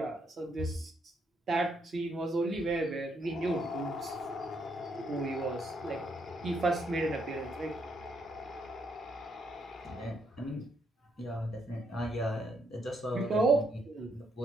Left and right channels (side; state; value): both; normal; correlation 0.75